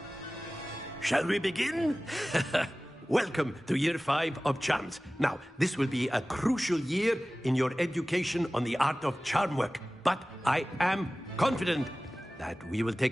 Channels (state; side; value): normal; both; correlation 0.97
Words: Shall we begin? Welcome to Year 5 of Charms. Now, this will be a crucial year in your education on the art of charm work. But I am confident that we will